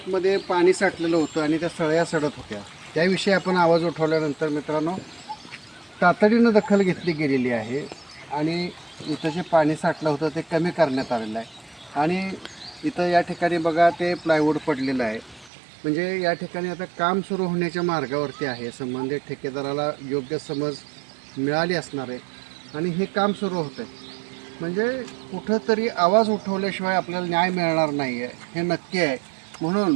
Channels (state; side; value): drops out; left; at 15.5 s